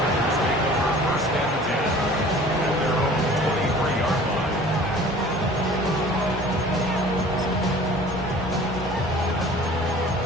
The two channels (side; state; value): both; normal; correlation 0.47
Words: First and 10 at their own 23-yard line.